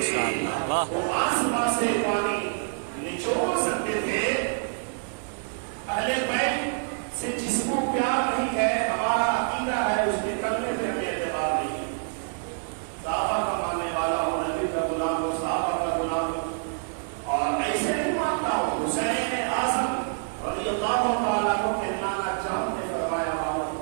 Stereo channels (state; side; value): silent; left; digital silence